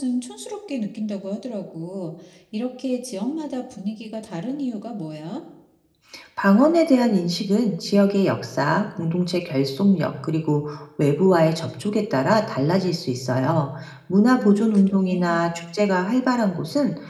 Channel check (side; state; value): both; identical; correlation 1.00